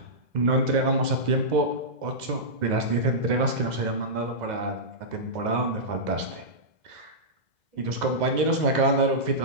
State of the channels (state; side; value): late; left; 2.0 ms